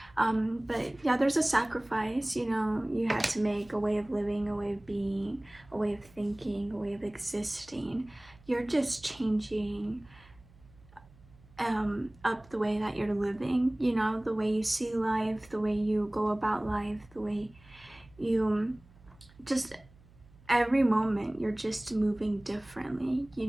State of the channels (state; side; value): noise; right; hum, 26 dB below the sound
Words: But yeah, there's a sacrifice, you know, you had to make, a way of living, a way of being, a way of thinking, a way of existing. You're just changing up the way that you're living, you know, the way you see life, the way you go about life, the way you just, every moment you're just moving differently. You